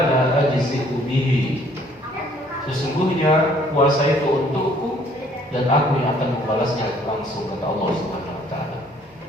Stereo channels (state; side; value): normal; both; correlation 0.61